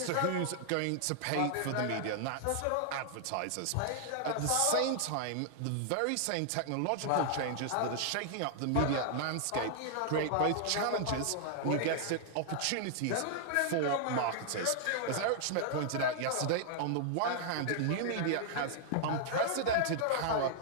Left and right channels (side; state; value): both; different; correlation -0.01